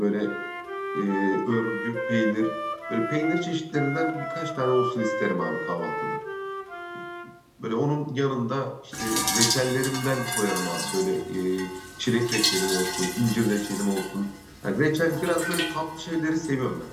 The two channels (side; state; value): both; identical; correlation 1.00